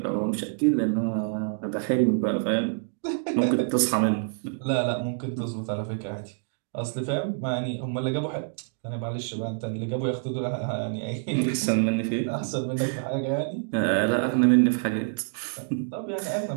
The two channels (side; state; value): left; silent; digital silence